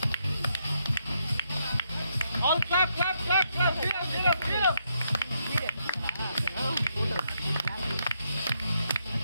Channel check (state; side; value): inverted; both; correlation -0.78